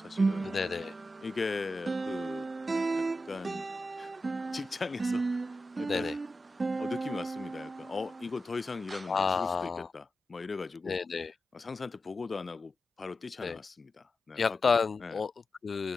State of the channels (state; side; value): normal; both; correlation 0.91